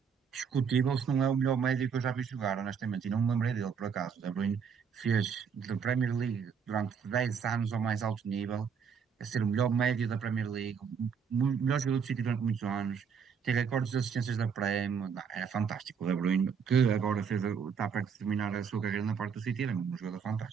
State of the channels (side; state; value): left; quieter; 6.6 dB